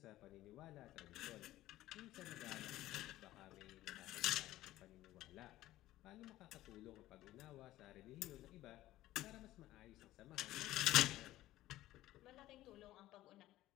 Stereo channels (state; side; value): quieter; right; 15.5 dB